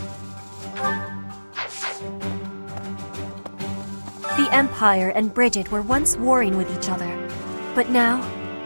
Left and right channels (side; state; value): both; inverted; correlation -1.00